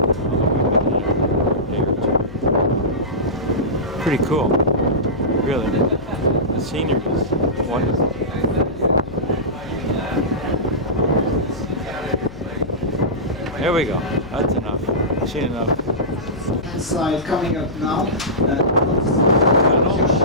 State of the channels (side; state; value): left; noise; hum, 16 dB below the sound